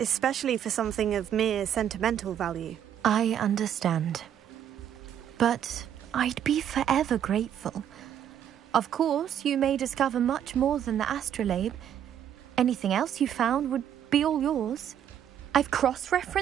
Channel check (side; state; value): left; quieter; 9.7 dB